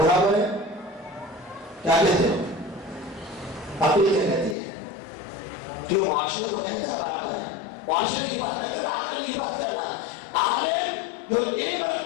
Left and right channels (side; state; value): right; drops out; at 4.5 s